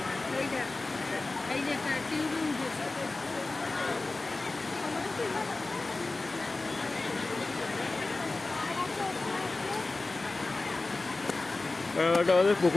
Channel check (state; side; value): quieter; right; 3.3 dB